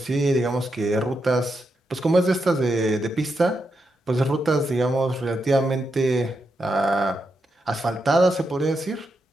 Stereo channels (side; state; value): both; normal; correlation 0.84